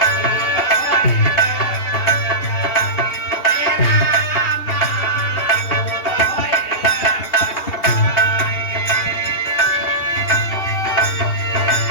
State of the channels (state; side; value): late; right; 2.8 ms